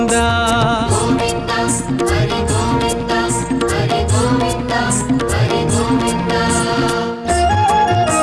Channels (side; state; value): both; identical; correlation 1.00